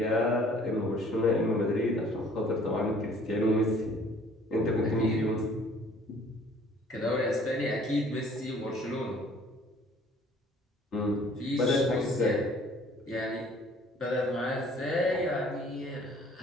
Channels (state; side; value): normal; both; correlation 0.55